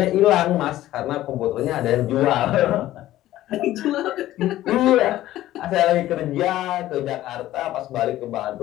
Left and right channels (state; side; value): quieter; right; 14.5 dB